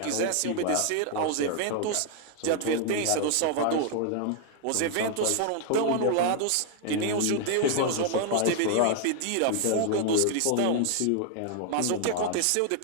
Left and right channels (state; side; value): different; both; correlation 0.00